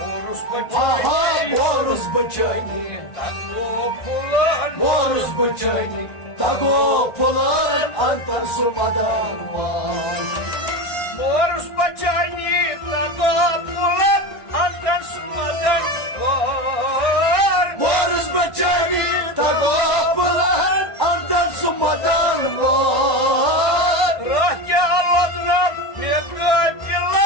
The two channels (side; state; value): right; late; 1.5 ms